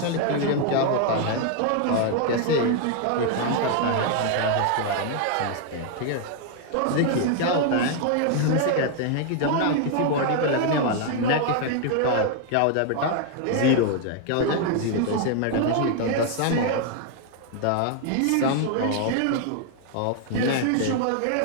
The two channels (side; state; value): both; different; correlation 0.00